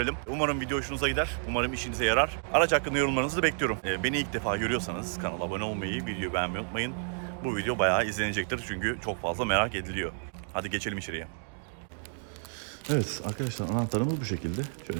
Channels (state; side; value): silent; left; 58 dB below the other